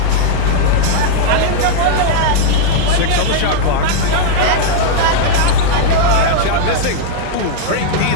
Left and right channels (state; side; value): different; both; correlation -0.01